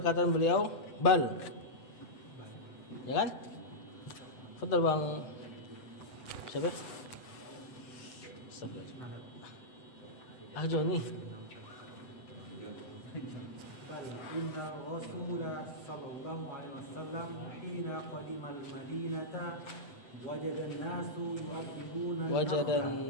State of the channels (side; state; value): right; late; 8.0 ms